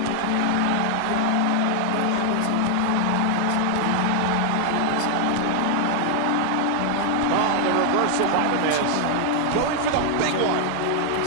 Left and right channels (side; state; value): both; different; correlation 0.00